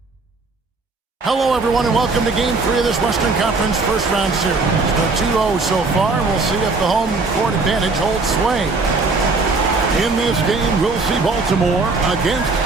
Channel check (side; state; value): left; quieter; 3.8 dB